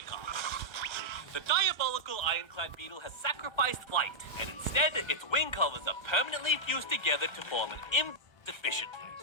car. The diabolical ironclad beetle has sacrificed flight, and instead, its wing covers are permanently fused together to form an efficiently.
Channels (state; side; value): late; right; 1.4 ms